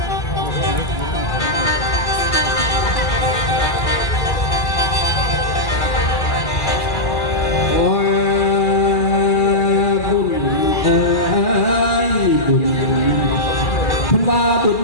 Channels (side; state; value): right; late; 2.4 ms